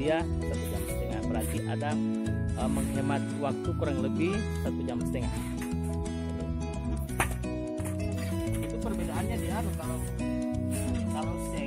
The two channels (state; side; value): identical; both; correlation 1.00